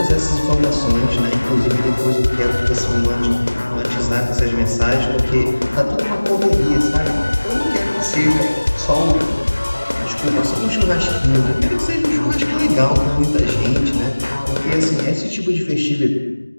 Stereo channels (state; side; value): inverted; both; correlation -1.00